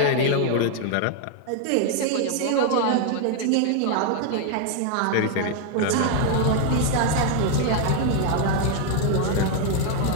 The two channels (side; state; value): both; different; correlation 0.00